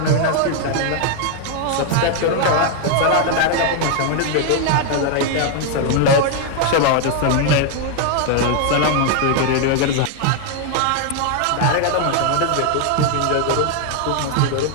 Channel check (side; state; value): both; different; correlation 0.00